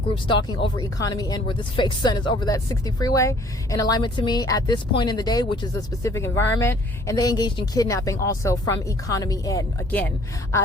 group stalking over Economy Inn, where this fake sun is over that 60 freeway, in alignment to me at this point in the day, which is a specific environment. And they engaged in kidnapping also from Economy Inn. Again,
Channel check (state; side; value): normal; both; correlation 0.57